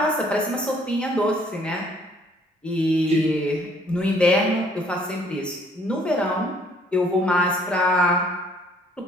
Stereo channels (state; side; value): normal; both; correlation 0.61